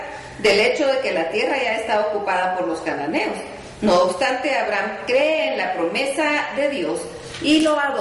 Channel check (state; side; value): identical; both; correlation 1.00